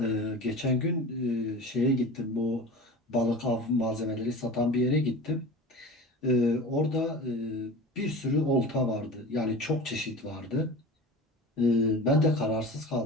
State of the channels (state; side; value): normal; both; correlation 0.34